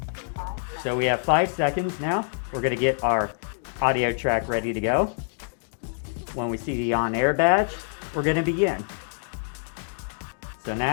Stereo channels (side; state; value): right; silent; digital silence